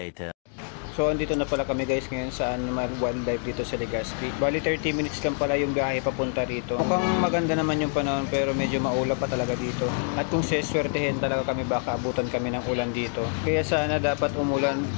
So andito na pala kami guys ngayon sa Animal Wildlife dito sa Legazpi. Bali 30 minutes lang pala yung biyahe papunta rito. Mukhang maganda naman yung panahon pero medyo maulap pa talaga dito. At kung seswertehin talaga kami baka abutan kami ng ulan dito. Kaya sana dapat umulan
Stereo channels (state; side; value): silent; right; 57 dB below the other